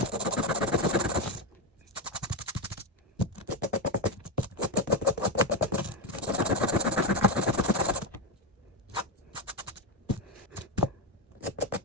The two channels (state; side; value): normal; both; correlation 0.09